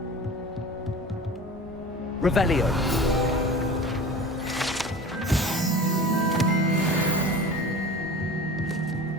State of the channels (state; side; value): normal; both; correlation 0.36